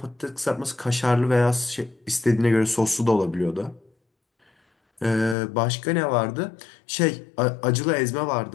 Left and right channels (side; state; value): right; drops out; at 5.4 s